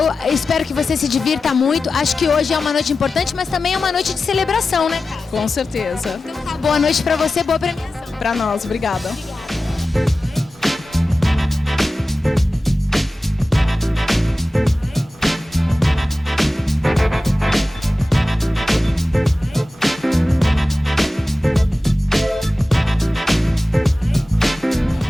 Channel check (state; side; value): normal; both; correlation 0.94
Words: espero que você se divirta muito. Acho que hoje é uma noite importante, mas também é uma noite de celebração, né, cara? Com certeza. Então tá, boa noite para você, boa premiação. Para nós, obrigada.